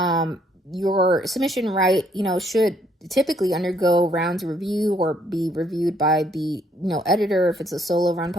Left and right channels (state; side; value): normal; both; correlation 0.68